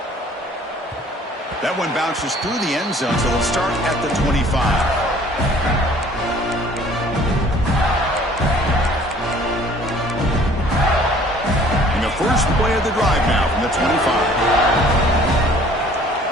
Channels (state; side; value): normal; both; correlation 0.54